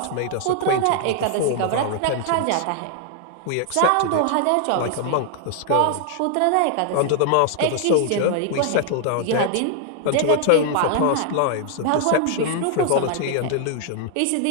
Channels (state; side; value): different; both; correlation 0.00